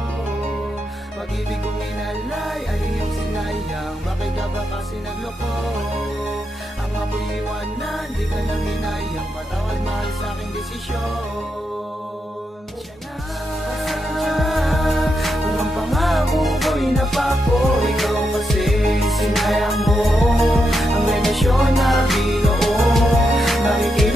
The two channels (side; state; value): both; normal; correlation 0.83